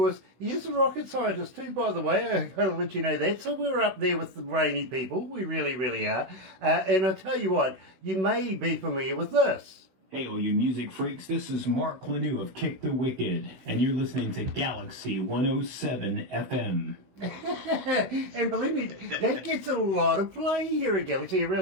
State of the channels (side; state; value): left; late; 16 ms